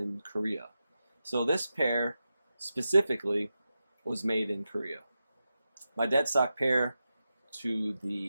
Korea. So this pair specifically was made in Korea. My dead stock pair to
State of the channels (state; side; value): inverted; both; correlation -0.90